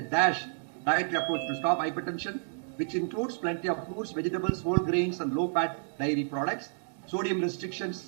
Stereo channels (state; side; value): silent; left; digital silence